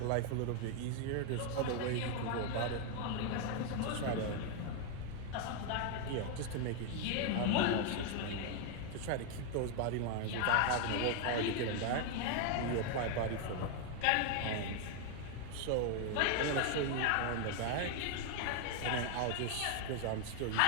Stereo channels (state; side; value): different; both; correlation 0.00